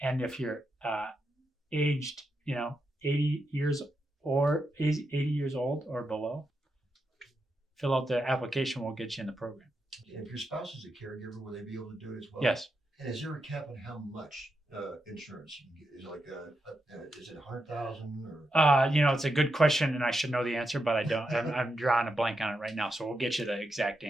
and if you're aged, 80 years old or below, fill out the application. We'll get you in the program. If your spouse is a caregiver, will they be able to do it as well? Yes. And is there a cap on how much insurance you can get? Is it like is it 100,000 or? It's a good question, and I should know the answer, but I don't. I'm drawing a blank on it right now, so we'll get you the exact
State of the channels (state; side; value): normal; both; correlation 0.85